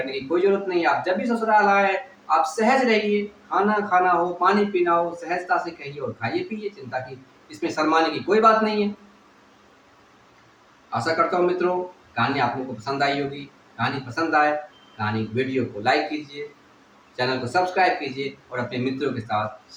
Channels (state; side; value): identical; both; correlation 1.00